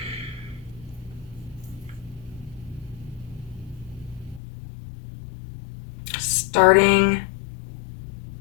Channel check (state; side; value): drops out; right; at 4.4 s